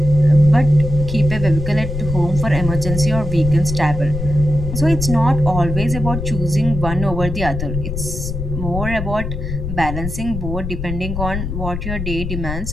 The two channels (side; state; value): left; noise; rumble, 5 dB below the sound